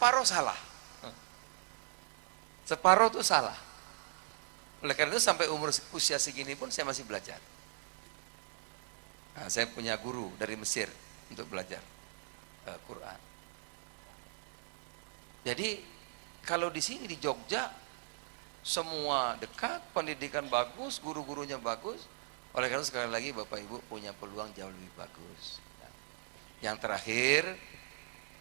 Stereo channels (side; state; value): left; silent; digital silence